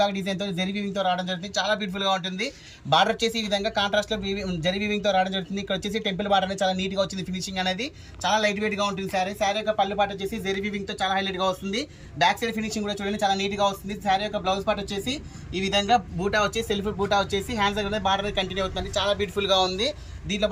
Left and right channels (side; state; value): both; identical; correlation 1.00